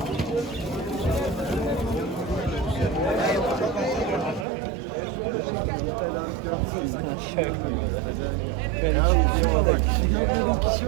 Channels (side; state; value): left; drops out; at 4.5 s